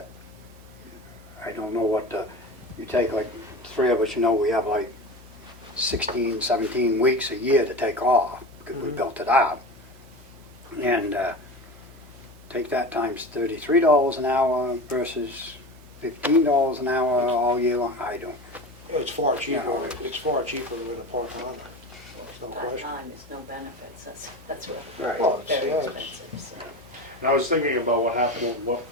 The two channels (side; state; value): both; normal; correlation 0.30